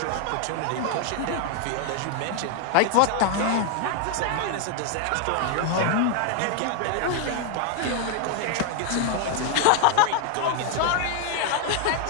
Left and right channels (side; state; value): both; different; correlation 0.00